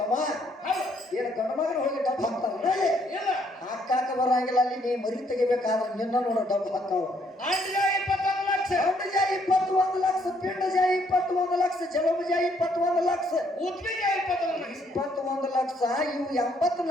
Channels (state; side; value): normal; both; correlation 0.69